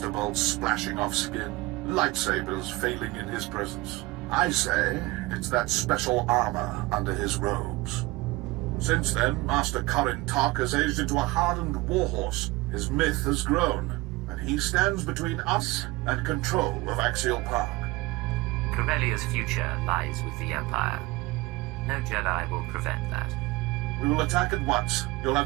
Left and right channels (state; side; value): quieter; left; 21.5 dB